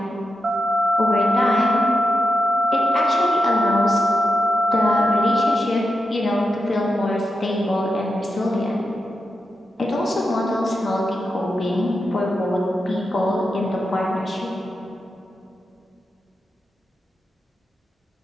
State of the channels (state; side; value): normal; both; correlation 0.87